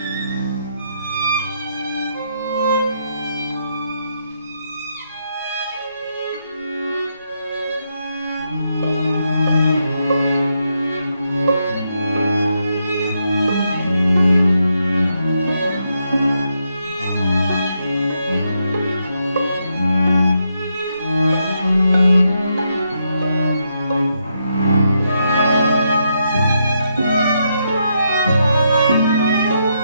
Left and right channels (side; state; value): both; inverted; correlation -0.80